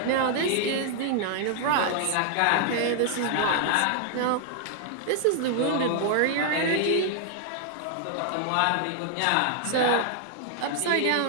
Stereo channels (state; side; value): different; both; correlation 0.00